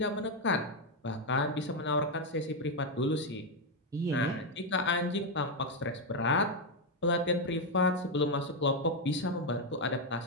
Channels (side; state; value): both; normal; correlation 0.04